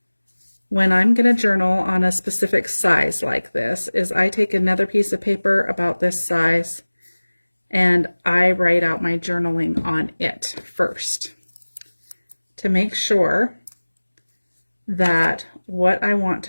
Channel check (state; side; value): inverted; both; correlation -1.00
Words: when I'm going to journal on a specific size like this, is I take another piece of paper about this size and I write out my journaling on it first to make sure that what I want